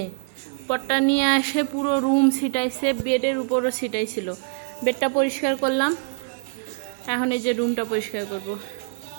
পটটা নিয়ে আসে পুরো রুম ছিটাইছে, বেডের উপরও ছিটাইছিল। বেডটা পরিষ্কার করলাম, এখন এই যে রুমটা পরিষ্কার করব।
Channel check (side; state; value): left; silent; digital silence